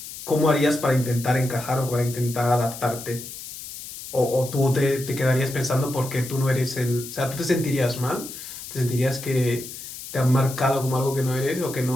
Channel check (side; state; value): left; noise; hiss, 11 dB below the sound